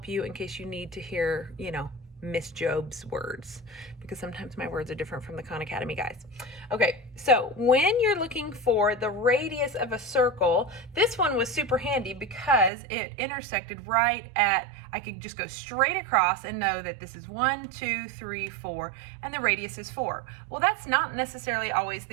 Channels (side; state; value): left; drops out; at 12.7 s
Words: you in case you need to hear, Miss Job's words, because sometimes my words are different from the Khan Academy guys. Okay, so when you're looking for the radius of a circle, this one was super handy because it intersected right at, I could just go straight across and know that this is 1, 2, 3, 4, and the radius is 4. Well, that's not necessarily always the